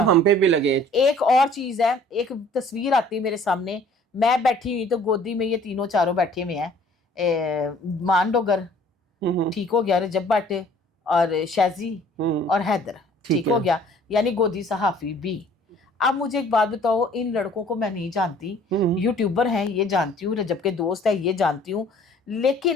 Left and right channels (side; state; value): both; normal; correlation 0.54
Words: हम पे भी लगे। एक और चीज है, एक तस्वीर आती है मेरे सामने, मैं बैठी हुई तो गोदी में ये तीनों चारों बैठे हुए हैं, मान डोगर, ठीक हो गया, रजब भट्ट और शाजी और हैदर, ठीक हो गया, यानी गोदी सहाफी भी। अब मुझे एक बात बताओ, इन लड़कों को मैं नहीं जानती, यूट्यूबर हैं ये जानती हूँ, रजब के दोस्त है ये जानती हूँ,